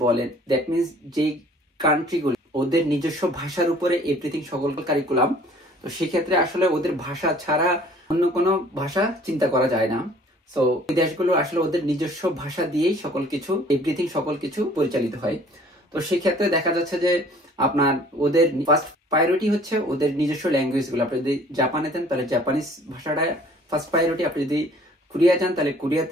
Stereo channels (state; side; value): normal; both; correlation 0.54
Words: বলেন, দ্যাট মিনস যে কান্ট্রিগুলো ওদের নিজস্ব ভাষার উপরে এভরিথিং সকল কারিকুলাম, তো সেক্ষেত্রে আসলে ওদের ভাষা ছাড়া অন্য কোনো ভাষা চিন্তা করা যায় না। সো এই দেশগুলো আসলে ওদের নিজস্ব ভাষা দিয়েই সকল কিছু এভরিথিং সকল কিছু পরিচালিত হয়। তো সেক্ষেত্রে দেখা যাচ্ছে যে আপনার ওদের ফার্স্ট প্রায়োরিটি হচ্ছে ওদের নিজস্ব ল্যাঙ্গুয়েজ গুলো। আপনি যদি জাপানে দেন তাহলে জাপানিজ ভাষাটা ফার্স্ট প্রায়োরিটি, আপনি যদি কোরিয়া যান তাহলে